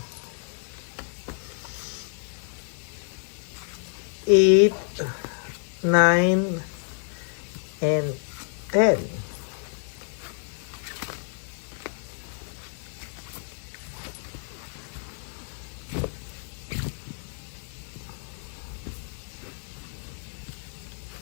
8, 9, and 10.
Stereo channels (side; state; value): right; silent; 59 dB below the other